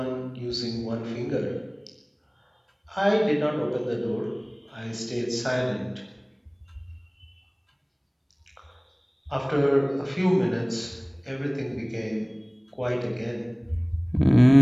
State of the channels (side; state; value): both; identical; correlation 1.00